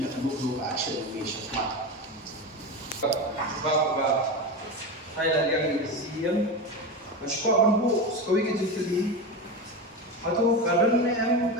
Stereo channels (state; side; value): normal; both; correlation 0.21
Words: yang dulu action ini syarat sebab Thailand yang siam Mashko banbu sekolah kita jadi, atau kadang ni